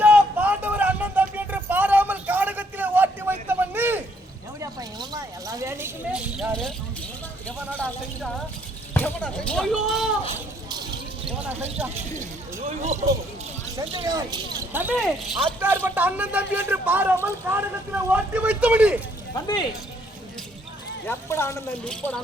பாண்டவர் அண்ணன் தம்பி என்று பாராமல் காடகத்திலே ஓட்டி வைத்தவன் நீ கேவடியா பையன் இவன் எல்லா வேலைக்குமே யாரு? எவனடா செஞ்சா? எவனா செஞ்சா? எவனா செஞ்சா? செஞ்சவன் தம்பி அத்தார்பட்ட அண்ணன் தம்பி என்று பாராமல் காடகத்திலே ஓட்டி வைத்தவன் நீ தம்பி எப்படா அண்ணன் தம்பி? இப்படா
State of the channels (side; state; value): both; normal; correlation 0.67